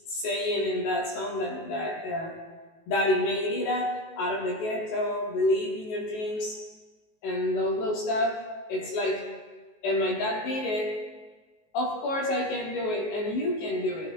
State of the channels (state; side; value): late; right; 19 ms